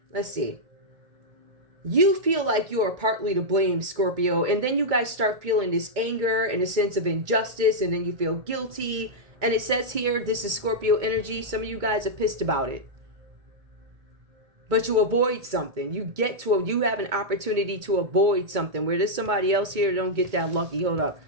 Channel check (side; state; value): left; late; 2.2 ms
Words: let's see. You feel like you are partly to blame, Scorpio. And then you guys start feeling this anger and a sense of injustice. And then you feel guilty. And it says here, this is Scorpio energy. Some of you guys are pissed about it. But you avoid something. You have an opportunity to avoid something. Where there's somebody else here, don't get that lucky. Hold up.